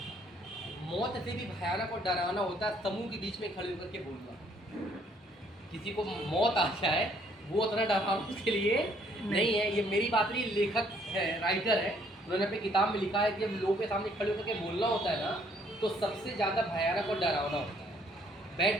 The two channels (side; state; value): both; normal; correlation 0.64